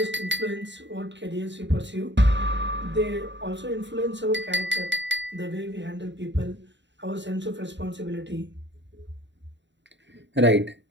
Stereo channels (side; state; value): left; late; 0.52 ms